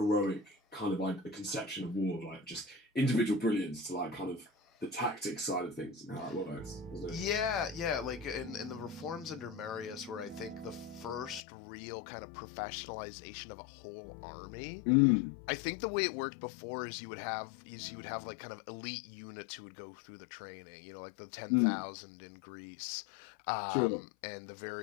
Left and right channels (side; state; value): right; drops out; at 11.4 s